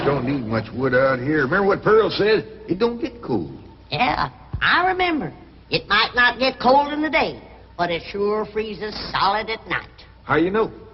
don't need much wood out here. Remember what Pearl said? It don't get cold. Yeah, I remember. It might not get cold in the day, but it sure freezes solid at night. How you know?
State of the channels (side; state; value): both; identical; correlation 1.00